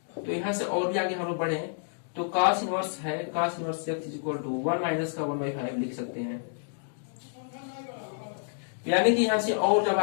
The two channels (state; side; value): silent; right; digital silence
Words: तो यहाँ से और भी आगे हम लोग बढ़े, तो cos इनवर्स है, cos inverse x is equal to 1 minus का 1/5 लिख सकते हैं। यानी कि यहाँ से और जब